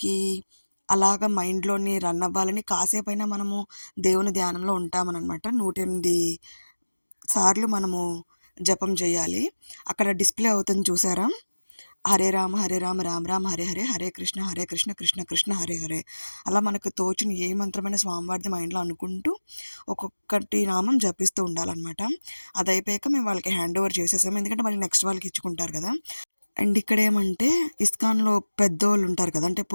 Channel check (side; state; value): both; inverted; correlation -1.00